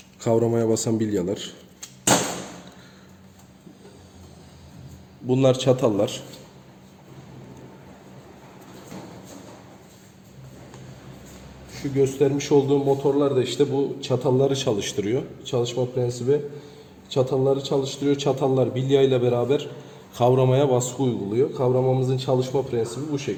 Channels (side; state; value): both; identical; correlation 1.00